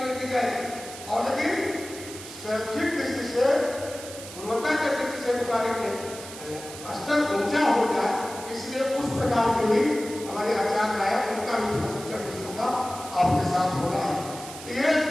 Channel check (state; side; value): noise; right; hiss, 13 dB below the sound